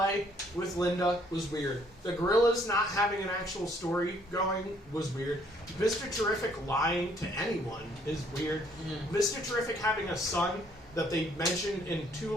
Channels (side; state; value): both; normal; correlation 0.64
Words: with Linda was weird. The gorillas not having an actual story going was weird. Mr. Terrific lying to anyone is weird. Mr. Terrific having a son that they mentioned in 2